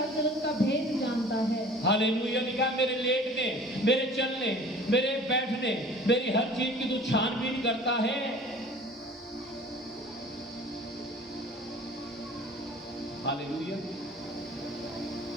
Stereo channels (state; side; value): normal; both; correlation 0.46